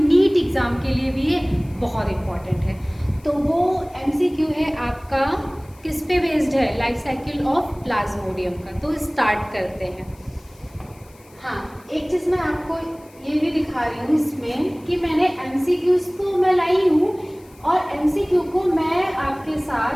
एग्ज़ाम के लिए भी ये बहुत इम्पॉर्टेंट है। तो वो एमसीक्यू है आपका किस पे बेस्ड है, लाइफ साइकिल ऑफ प्लाज्मोडियम का। तो स्टार्ट करते हैं। हाँ, एक चीज़ मैं आपको ये भी दिखा रही हूँ इसमें कि मैंने एमसीक्यूज तो मैं लाई हूँ और एमसीक्यू को मैं आपके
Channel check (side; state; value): left; noise; hiss, 28 dB below the sound